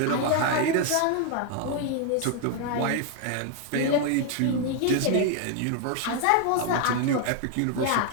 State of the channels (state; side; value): different; both; correlation 0.00